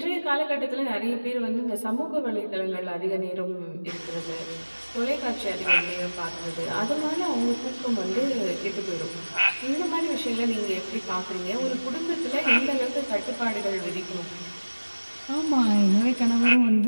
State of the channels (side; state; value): both; inverted; correlation -1.00